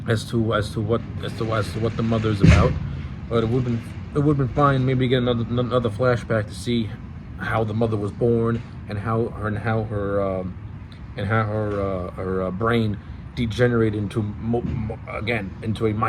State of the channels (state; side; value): identical; both; correlation 1.00